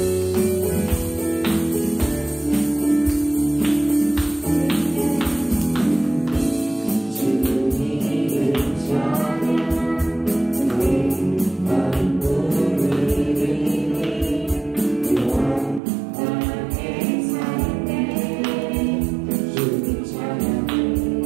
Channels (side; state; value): left; drops out; at 15.8 s